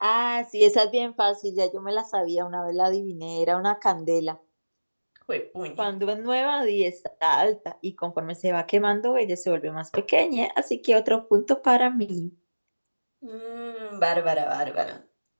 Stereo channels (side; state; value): both; inverted; correlation -1.00